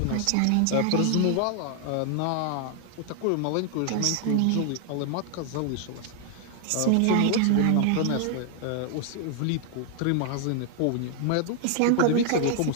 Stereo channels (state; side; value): different; both; correlation 0.00